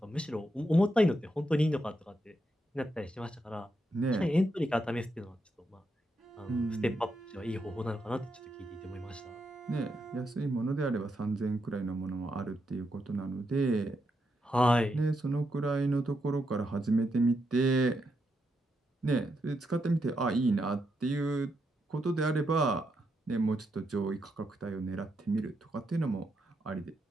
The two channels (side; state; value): both; normal; correlation 0.82